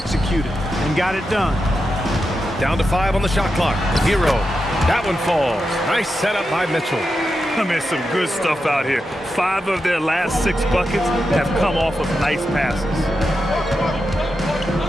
and got it done. Down to 5 on the shot clock. Herro. That one falls. Nice setup by Mitchell. I mean, some good stuff out here. 5 of their last 6 buckets have come off of nice passes.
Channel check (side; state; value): both; normal; correlation 0.88